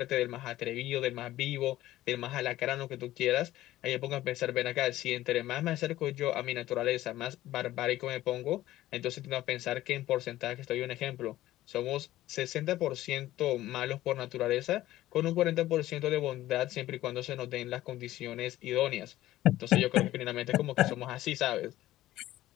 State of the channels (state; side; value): quieter; right; 15.1 dB